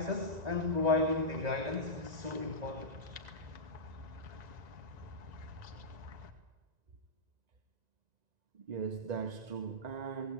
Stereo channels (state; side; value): late; left; 1.9 ms